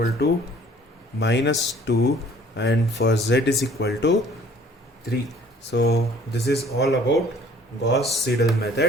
to minus 2 and for z is equal to 3. So this is all about Gauss-Seidel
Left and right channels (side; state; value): both; normal; correlation 0.55